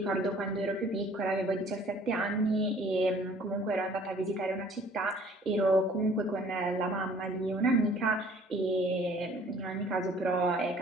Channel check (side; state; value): both; normal; correlation 0.54